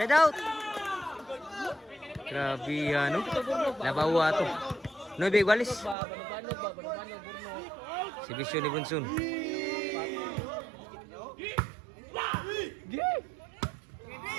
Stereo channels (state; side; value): drops out; left; at 6.0 s